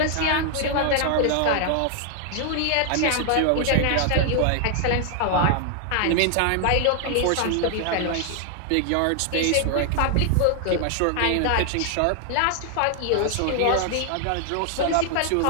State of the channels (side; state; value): both; different; correlation 0.00